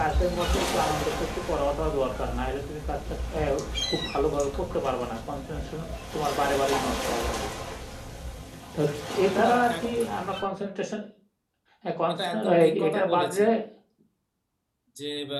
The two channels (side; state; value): both; identical; correlation 1.00